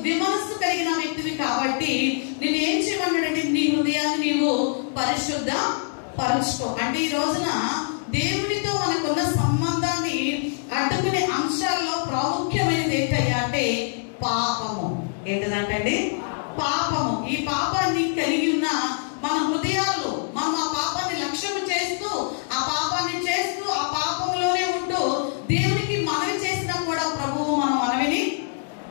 విమనస్సు కలిగిన వ్యక్తివి కాబట్టి నేను ఏం చేయమన్నాడంటే నీ హృదయాన్ని నీవు పరిశుద్ధ పరుచుకో. అంటే ఈ రోజున దేవునితో మనకున్న సంబంధాన్ని అడ్డుకునే అంశాల్లో ప్రాముఖ్యమైనది ఏంటయ్యా అంటే పాపము. ఏంటంటే పాపము. ఈ పాపాన్ని కలిగి ఉన్న మన హృదయాల్లో మనం ఆ పాపాన్ని లక్ష్యం చేస్తూ ఆ పాపాన్ని చేస్తూ ఆ పాపంలోనే ఉంటూ దేవునికి మనవి చేసినా కూడా ప్రభువు మన మనవిని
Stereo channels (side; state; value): right; silent; digital silence